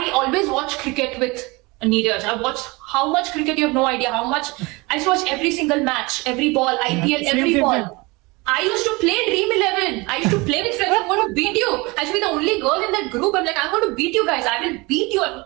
always watch cricket with Neeraj. I watched how much cricket, you have no idea how much. I used to watch every single match, every ball, IPL, every ball. I used to play Dream 11. I used to play with friends. I'm going to beat you. I should be the only girl in that group. I'm like, I'm going to beat you guys. I will beat you. I'll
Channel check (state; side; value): quieter; left; 24.8 dB